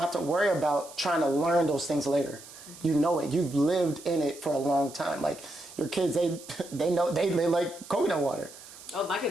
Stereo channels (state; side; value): noise; right; hiss, 17 dB below the sound